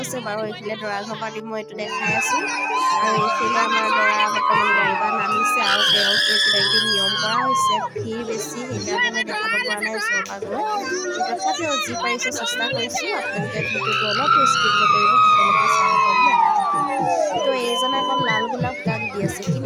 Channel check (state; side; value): identical; both; correlation 1.00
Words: আছে বাৰু। এইফালে দৰা ঘৰ পাৰ্টি মই এইটো দেখাই আছোঁ। আৰু এইফালে আমাৰ দৰা বৰ্তমান গাড়ীৰ পৰা নামিছে আৰু তেওঁক কিবাকিবি নিয়ম কৰা হৈছে। ভিৰ বেছি, সেইকাৰণে মই দেখাব পৰা নাই ওচৰৰ পৰা গৈ। তথাপিও যি পাৰিছোঁ চেষ্টা কৰিছোঁ। আপোনালোকে ভিডিঅ'টো অলপ স্কিপ নকৰিব, সকলোকে চাই হ'ব দেই। তো এইজনে আকৌ লাল গোলাপ কাক দি আছে,